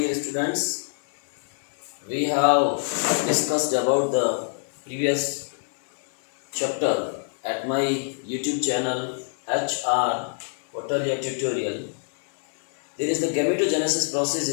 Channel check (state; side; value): silent; right; digital silence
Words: students. We have discussed about the previous chapter at my YouTube channel HR Hotelia Tutorial. There is the gametogenesis process